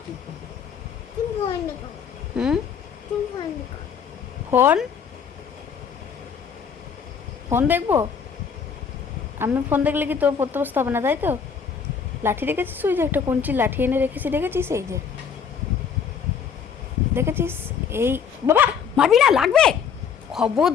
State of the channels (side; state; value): right; quieter; 6.8 dB